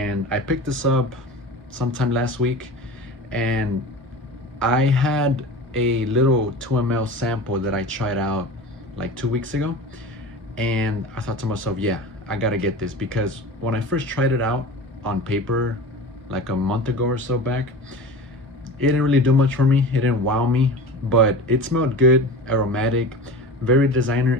I picked this up sometime last week, and I had a little 2 ml sample that I tried out like 2 weeks ago, and I thought to myself, yeah, I gotta get this, because when I first tried it out on paper like a month ago or so back, it didn't really do much for me. It didn't wow me, but it smelled good, aromatic, very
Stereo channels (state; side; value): normal; both; correlation 0.33